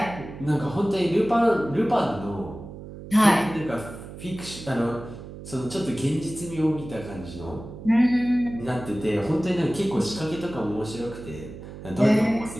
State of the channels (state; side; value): noise; right; hum, 13 dB below the sound